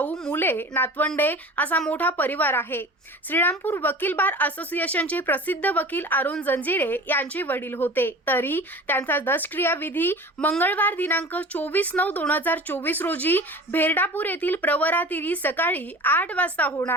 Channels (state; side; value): normal; both; correlation 0.38